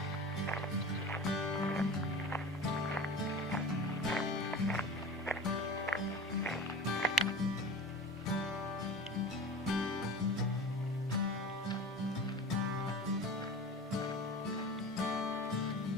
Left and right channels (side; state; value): both; normal; correlation 0.35